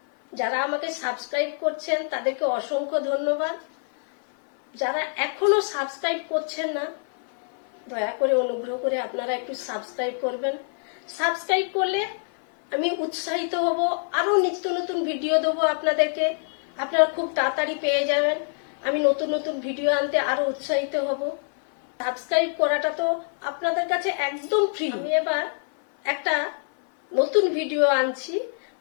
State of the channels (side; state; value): right; silent; 57 dB below the other